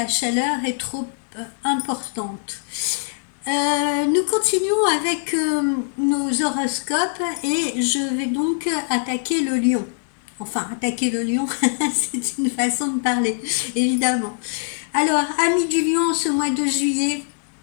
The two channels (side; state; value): right; silent; digital silence